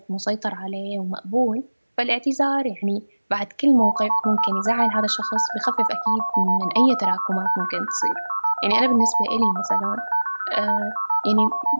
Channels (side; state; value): both; inverted; correlation -1.00